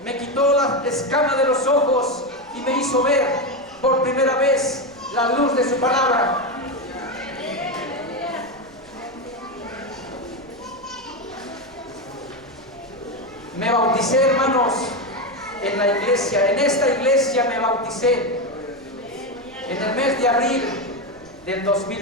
Me quitó la escama de los ojos y me hizo ver por primera vez la luz de su palabra. Me bauticé, hermanos, en la iglesia. En esta iglesia me bauticé en el mes de abril del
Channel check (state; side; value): noise; right; rumble, 29 dB below the sound